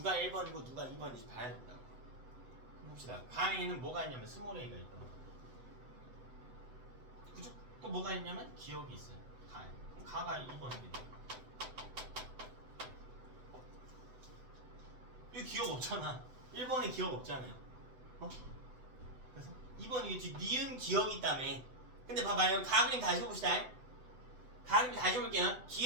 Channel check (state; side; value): late; left; 7.9 ms